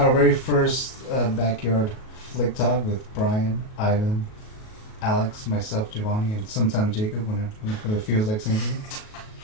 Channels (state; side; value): late; right; 37 ms